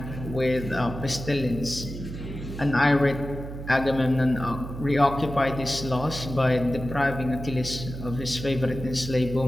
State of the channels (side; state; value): right; noise; hum, 9 dB below the sound